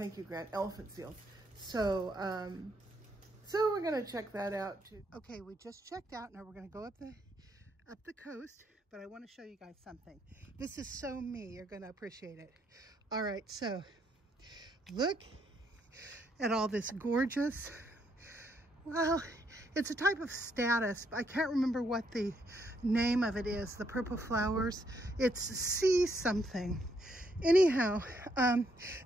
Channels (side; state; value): both; normal; correlation 0.74